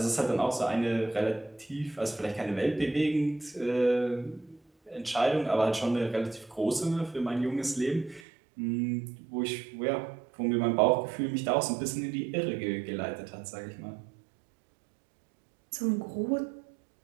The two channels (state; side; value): drops out; left; at 8.2 s